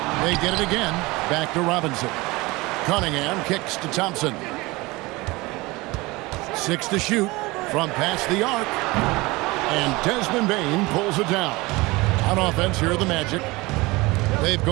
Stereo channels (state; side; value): quieter; left; 22.5 dB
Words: They get it again. Back to Robinson. Cunningham kicks to Thompson. 6 to shoot from past the arc. And Desmond Bain pulls it down. On offense, here are the Magic. They've